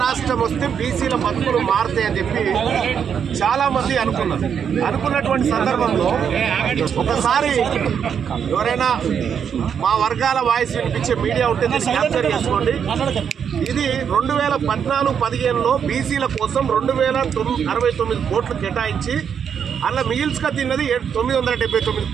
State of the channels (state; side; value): quieter; left; 7.6 dB